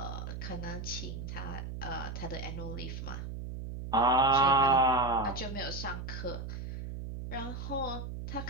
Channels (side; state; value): right; noise; hum, 7 dB below the sound